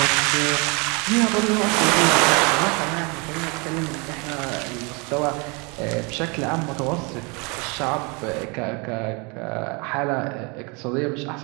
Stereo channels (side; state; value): left; quieter; 30.3 dB